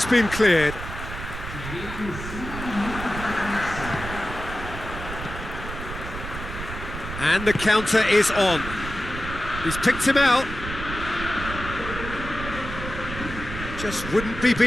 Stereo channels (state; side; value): noise; right; rumble, 8 dB below the sound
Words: been cleared. And the counter is on. He's picked him out. Just wouldn't be